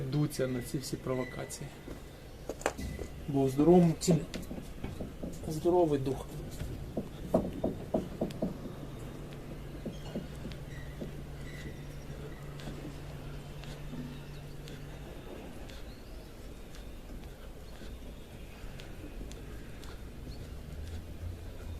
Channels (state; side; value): identical; both; correlation 1.00